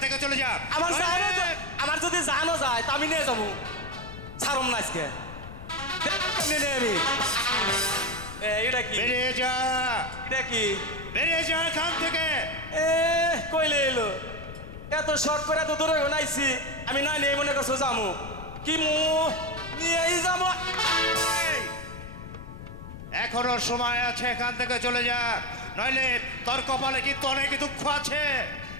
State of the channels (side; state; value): left; noise; rumble, 12 dB below the sound